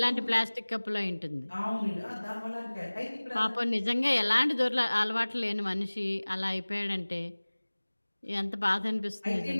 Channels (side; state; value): both; inverted; correlation -1.00